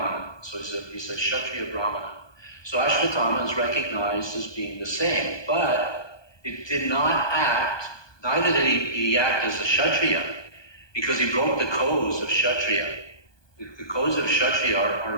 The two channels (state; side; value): late; right; 1.2 ms